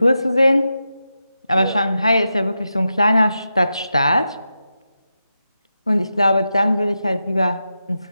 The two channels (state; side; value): inverted; both; correlation -0.89